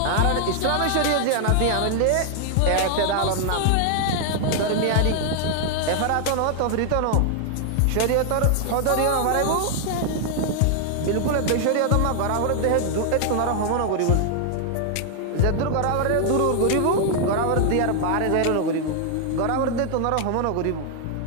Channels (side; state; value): both; different; correlation 0.00